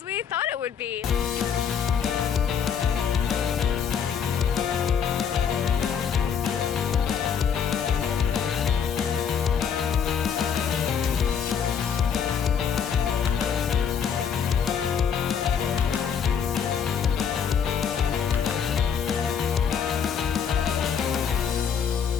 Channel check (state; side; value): quieter; right; 7.4 dB